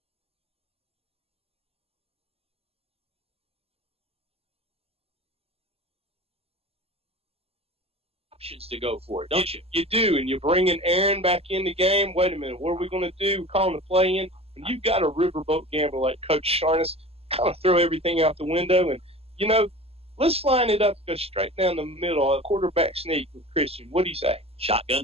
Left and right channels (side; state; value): left; late; 0.29 ms